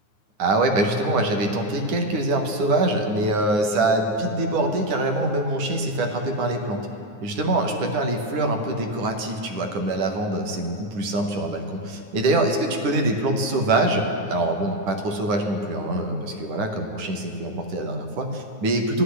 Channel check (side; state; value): left; late; 9.6 ms